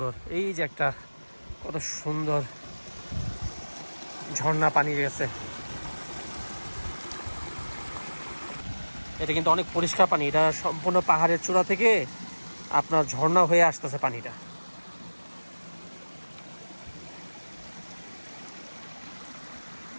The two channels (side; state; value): both; inverted; correlation -1.00